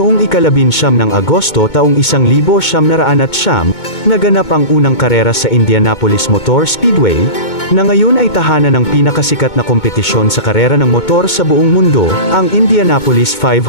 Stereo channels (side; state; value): right; late; 2.2 ms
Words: ika-19 ng Agosto taong 1909, naganap ang unang karera sa Indianapolis Motor Speedway, na ngayon ay tahanan ng pinakasikat na kompetisyon sa karera ng motor sa buong mundo, ang Indianapolis